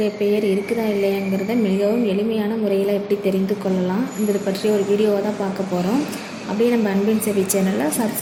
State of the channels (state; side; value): identical; both; correlation 1.00